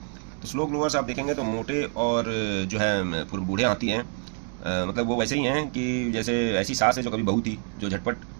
तो स्लो ग्रोवर्स आप देखेंगे तो मोटे और जो है बूढ़े हाथी हैं, मतलब वो वैसे ही हैं कि जैसे ऐसी सास है जो कभी बहू थी, जो झटपट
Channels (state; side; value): quieter; left; 37.8 dB